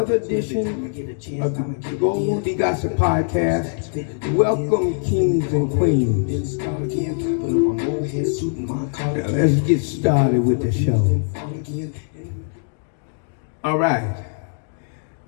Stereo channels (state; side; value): silent; right; digital silence